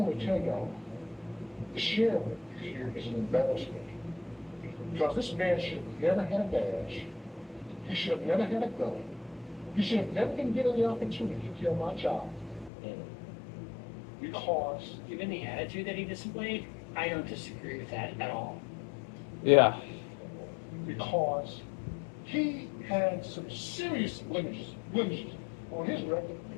to tell y'all, the sheriff here is an embarrassment. Because this man should have never had a badge. He should have never had a gun. He should have never been given the opportunity to kill my child. Because Given the attitude that he displayed, I don't disagree with that at all. Yeah. because he had some serious blemishes on his record.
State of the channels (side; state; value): right; drops out; at 12.7 s